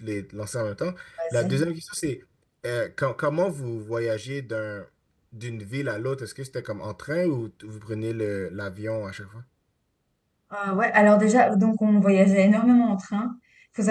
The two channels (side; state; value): both; identical; correlation 1.00